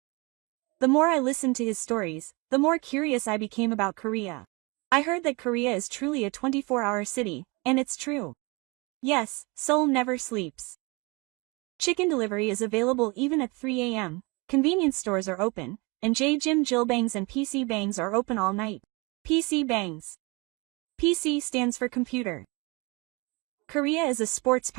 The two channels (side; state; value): left; quieter; 27.6 dB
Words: The more I listened to his stories, the more curious I became about Korea. I heard that Korea is truly a 24-hour city, and it's true. Yes, Seoul never sleeps. Chicken delivery is available even at 3 a.m., convenience stores are open, and Jim Jill Bangs and PC Bangs are open all night. PC Bangs. PC stands for computer. Korea is a sports